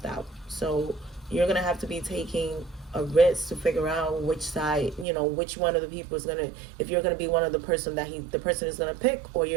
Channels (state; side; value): drops out; left; at 5.1 s